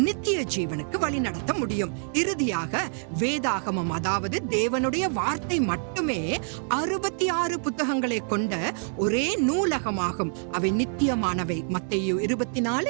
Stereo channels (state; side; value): silent; left; 61 dB below the other